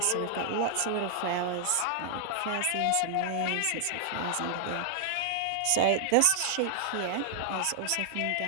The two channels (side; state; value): both; different; correlation 0.00